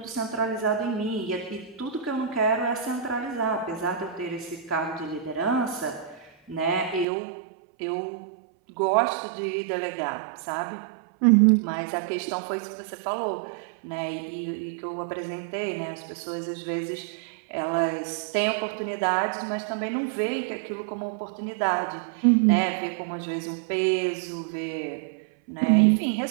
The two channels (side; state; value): left; drops out; at 7.1 s